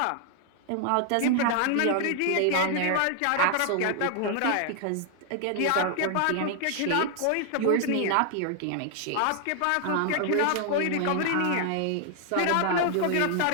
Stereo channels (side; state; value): both; different; correlation 0.00